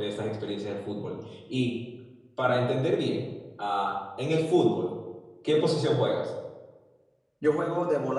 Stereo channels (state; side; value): identical; both; correlation 1.00